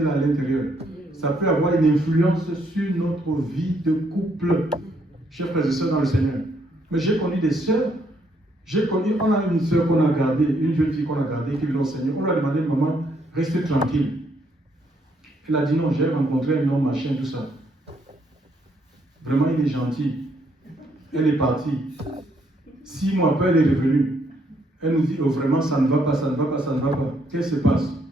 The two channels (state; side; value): normal; both; correlation 0.72